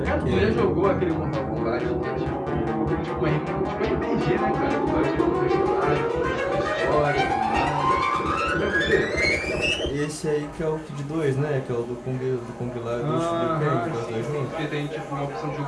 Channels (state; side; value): identical; both; correlation 1.00